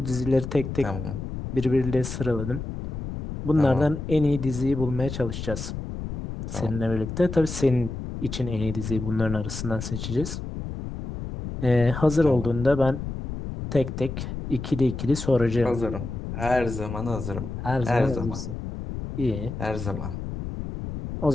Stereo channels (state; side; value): noise; left; rumble, 7 dB below the sound